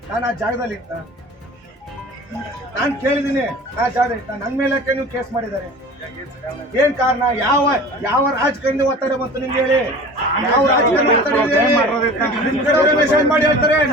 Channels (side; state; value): both; normal; correlation 0.40